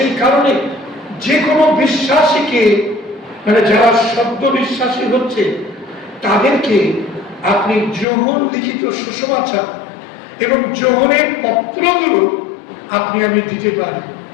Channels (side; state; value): right; drops out; at 8.1 s